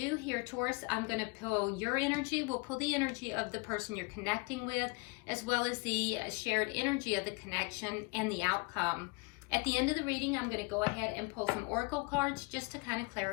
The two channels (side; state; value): right; quieter; 28.8 dB